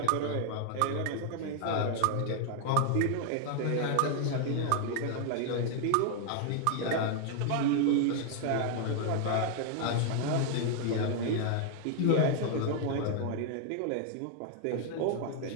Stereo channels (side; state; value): both; different; correlation 0.00